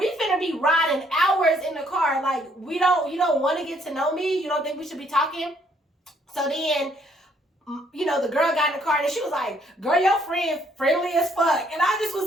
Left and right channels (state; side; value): normal; both; correlation 0.67